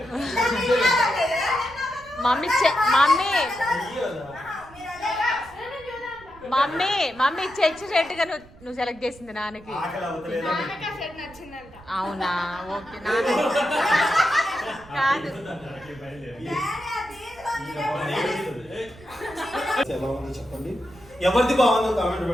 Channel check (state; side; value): noise; right; rumble, 23 dB below the sound